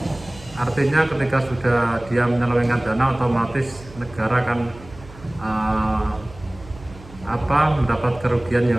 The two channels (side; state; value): right; noise; hum, 19 dB below the sound